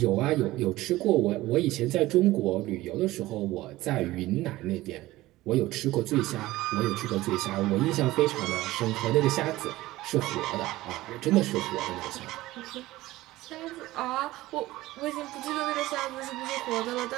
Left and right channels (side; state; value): left; quieter; 17.5 dB